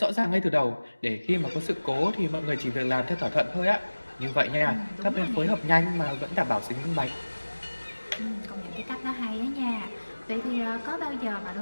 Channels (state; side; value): inverted; both; correlation -1.00